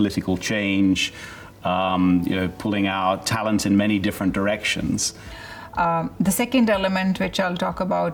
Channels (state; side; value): identical; both; correlation 1.00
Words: change. Pulling out talent in many different directions. The second element which I'll talk